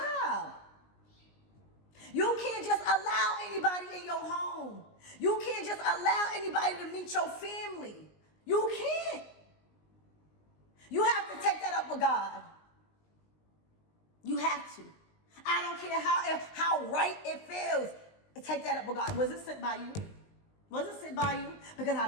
You can't just allow anybody in your home. You can't just allow anybody to meet your family. You can't. You have to take that up with God. You have to. I don't care how right it feels. Take that up with God. Was it sent by you? Was it sent by you? Because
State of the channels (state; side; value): late; right; 19 ms